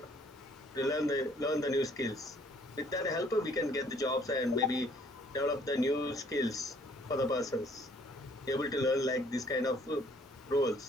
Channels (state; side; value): normal; both; correlation 0.61